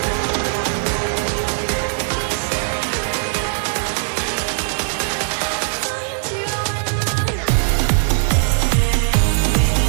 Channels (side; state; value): left; silent; 59 dB below the other